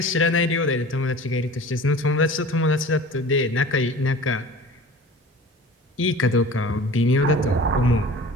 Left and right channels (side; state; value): both; normal; correlation 0.41